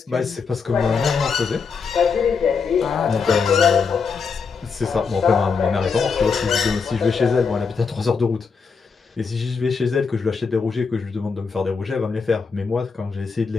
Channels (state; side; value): quieter; right; 5.4 dB